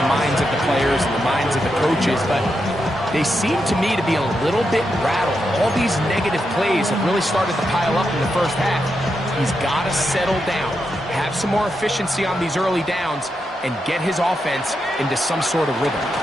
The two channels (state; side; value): normal; both; correlation 0.85